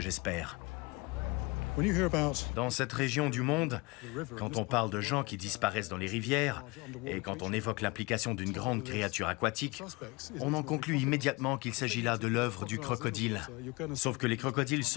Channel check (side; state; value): right; quieter; 25.7 dB